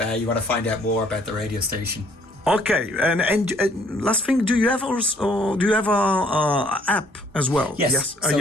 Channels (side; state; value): both; normal; correlation 0.63